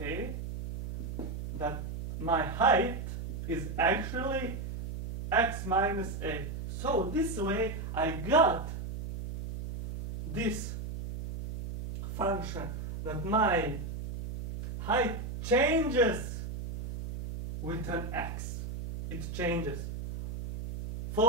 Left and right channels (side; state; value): right; noise; hum, 6 dB below the sound